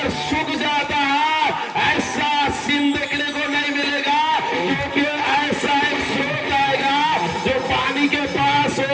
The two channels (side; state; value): both; identical; correlation 1.00